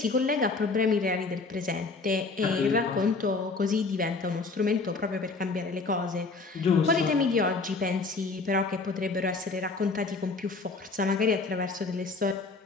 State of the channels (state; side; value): quieter; right; 3.9 dB